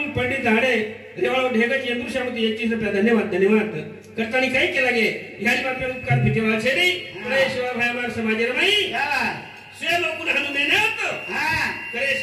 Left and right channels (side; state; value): both; identical; correlation 1.00